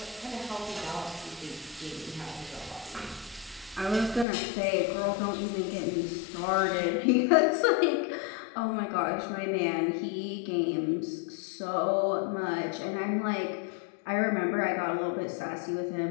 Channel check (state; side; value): drops out; right; at 4.2 s